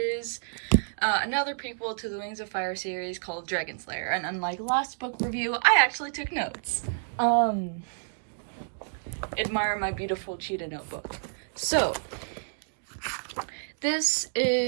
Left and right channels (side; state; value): left; silent; digital silence